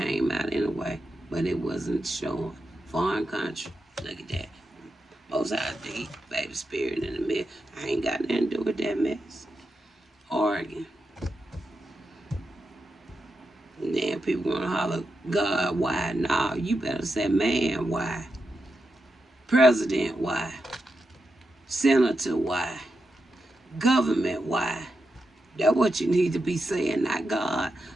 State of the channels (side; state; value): both; normal; correlation 0.87